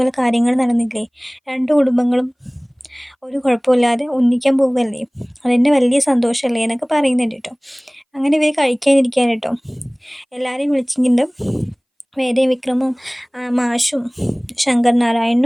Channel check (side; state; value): both; identical; correlation 1.00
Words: കാര്യങ്ങൾ നടന്നില്ലേ. രണ്ട് കുടുംബങ്ങളും ഒരു കുഴപ്പമില്ലാതെ ഒന്നിക്കാൻ പോവുകയല്ലേ, അതെന്നെ വലിയ സന്തോഷമല്ലേ എന്നൊക്കെ പറയുന്നുണ്ട് കേട്ടോ. അങ്ങനെ ഇവർ കഴിക്കാനിരിക്കാൻ കേട്ടോ. എല്ലാവരെയും വിളിച്ചിട്ടുണ്ട്. വേദയും വിക്രമും മാഷും ശങ്കർ